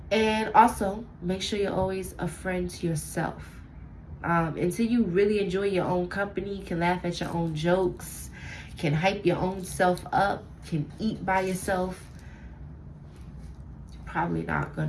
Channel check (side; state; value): both; identical; correlation 1.00